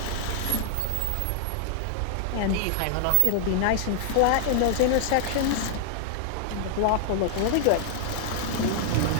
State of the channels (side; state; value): both; different; correlation -0.01